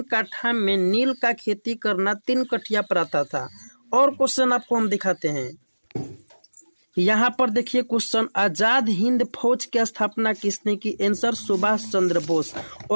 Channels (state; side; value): inverted; both; correlation -1.00